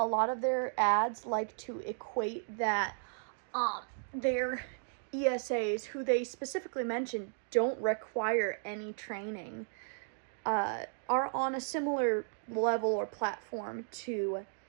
lot of their ads like to equate that their ESAs, who they specifically mention don't require any training, are on a similar level or platform to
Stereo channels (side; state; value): left; silent; digital silence